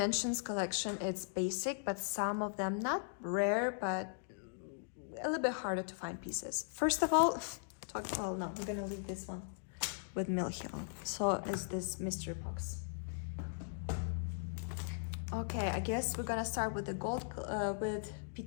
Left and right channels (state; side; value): silent; right; digital silence